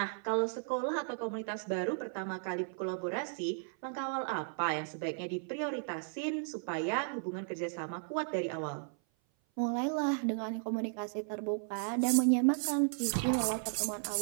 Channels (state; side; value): silent; left; 54 dB below the other